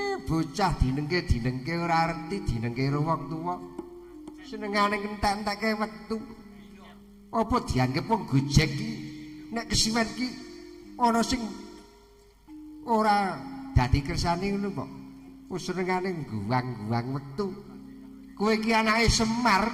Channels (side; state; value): both; identical; correlation 1.00